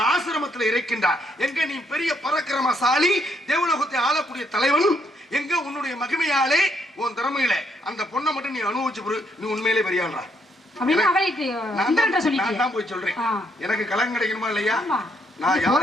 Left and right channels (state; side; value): normal; both; correlation 0.73